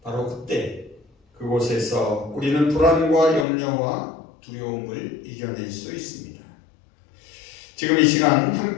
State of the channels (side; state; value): right; drops out; at 3.5 s